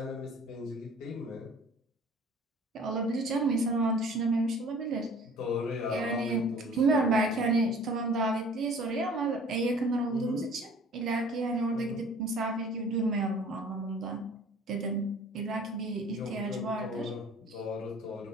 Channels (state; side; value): normal; both; correlation 0.49